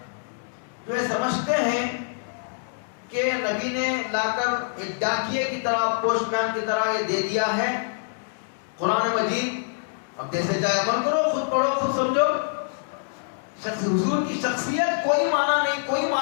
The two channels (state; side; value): silent; right; digital silence